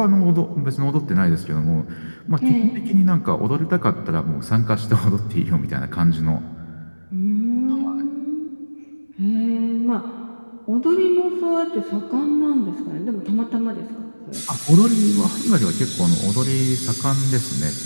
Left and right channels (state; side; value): inverted; both; correlation -1.00